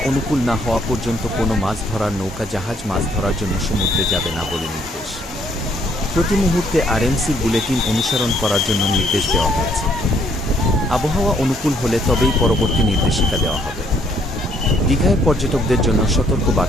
অনুকূল না হওয়া পর্যন্ত কোনো মাছ ধরার নৌকা, জাহাজ মাছ ধরার জন্য সমুদ্রে যাবে না বলে নির্দেশ। প্রতি মুহূর্তে আরএমসির বুলেটিন অনুসরণ করার জন্য নির্দেশ দেওয়া হয়েছে। আবহাওয়া অনুকূল হলে তবেই পরবর্তী নির্দেশিকা দেওয়া হবে। দীঘায় পর্যটকদের জন্য সতর্ক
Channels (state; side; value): normal; both; correlation 0.67